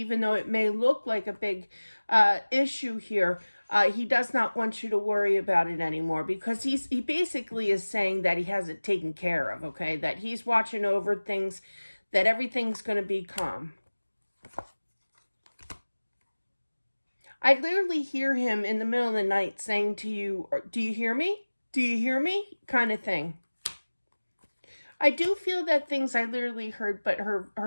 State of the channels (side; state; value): both; inverted; correlation -1.00